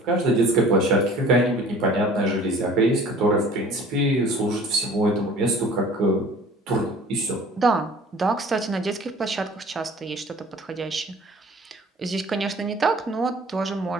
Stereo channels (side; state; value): both; normal; correlation 0.48